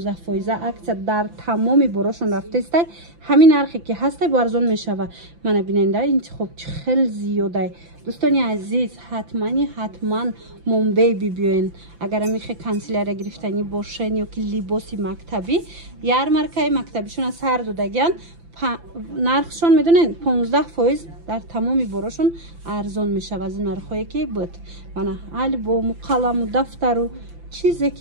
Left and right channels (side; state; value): left; late; 5.9 ms